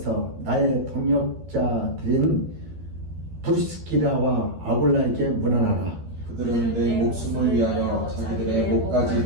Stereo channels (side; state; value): left; late; 12 ms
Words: 나의 동역자들인 브리스키라와 아굴라에게 문안하라. 그들은 내 목숨을 위하여 자기들의